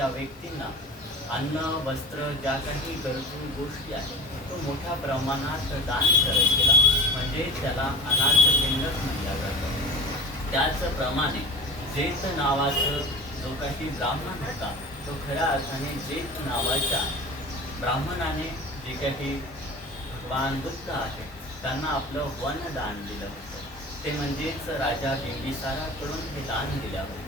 व्यक्तींना अन्न, वस्त्र, ज्या काही गरजू गोष्टी आहेत, तो मोठ्या प्रमाणात दान करत गेला, म्हणजे त्याला अनाथ पिंडक म्हणलं जातं. त्याचप्रमाणे जेत नावाचं जो काही ब्राह्मण होता, तो खऱ्या अर्थाने जेत नावाच्या ब्राह्मणाने जे काही भगवान बुद्ध आहे त्यांना आपलं वनदान दिलं होतं. ते म्हणजेच राजा बिंबिसाराकडून हे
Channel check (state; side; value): normal; both; correlation 0.33